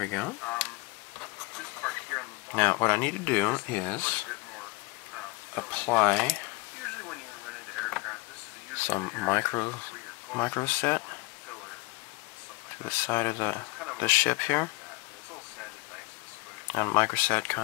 go. Now, what I need to do is apply some micro set to the side of the ship here. And microset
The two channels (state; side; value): quieter; right; 24.6 dB